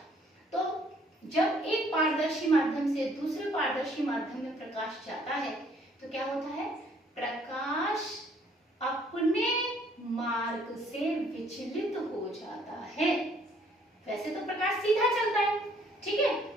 तो जब एक पारदर्शी माध्यम से दूसरे पारदर्शी माध्यम में प्रकाश जाता है तो क्या होता है, प्रकाश अपने मार्ग से विचलित हो जाता है। वैसे तो प्रकाश सीधा चलता है, ठीक है,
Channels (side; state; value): both; normal; correlation 0.62